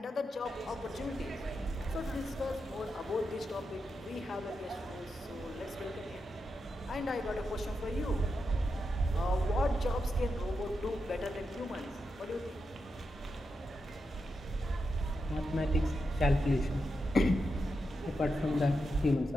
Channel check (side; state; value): both; normal; correlation 0.87